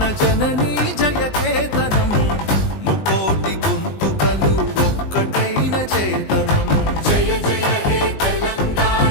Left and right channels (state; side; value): late; right; 19 ms